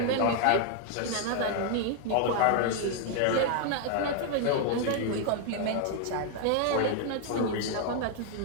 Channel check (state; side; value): different; both; correlation 0.00